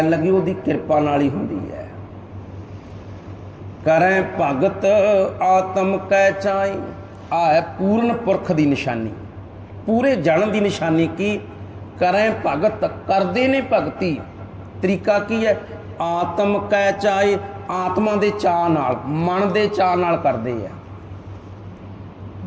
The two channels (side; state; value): both; identical; correlation 1.00